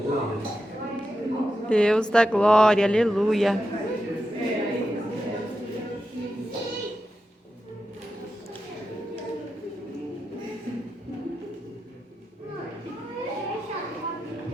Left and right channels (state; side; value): normal; both; correlation 0.89